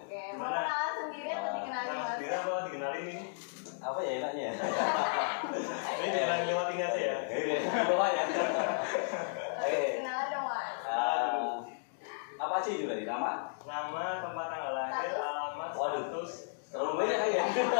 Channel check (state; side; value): silent; right; digital silence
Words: mau kenalan sendiri atau dikenalin Mas Mas? Bira apa dikenalin ini? Apa ya enaknya ya? Ini dikenalin lewat ini aja ya. Bawa ya. Oke, kenalan dong Mas. Apa aja itu dari nama? Nama, tempat tanggal lahir, alamat, Waduh. status. Terlalu banyak kan ya?